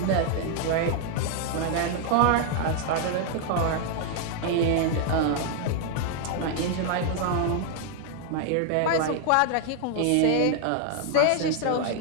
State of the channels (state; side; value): different; both; correlation 0.00